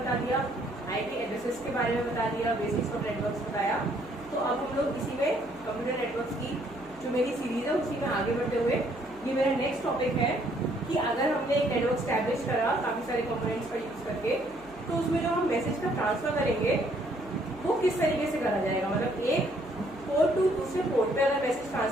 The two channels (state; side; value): noise; right; hum, 23 dB below the sound